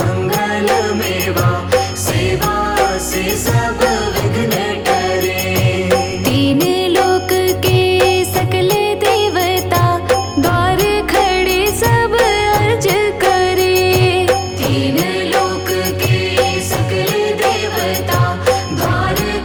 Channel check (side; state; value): both; identical; correlation 1.00